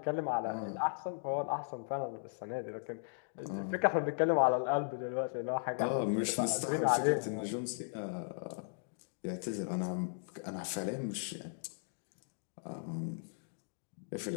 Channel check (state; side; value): silent; right; digital silence